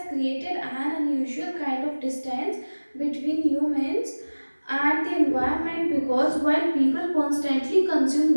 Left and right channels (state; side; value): inverted; both; correlation -1.00